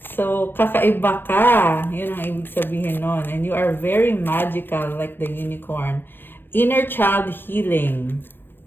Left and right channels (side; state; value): right; late; 0.10 ms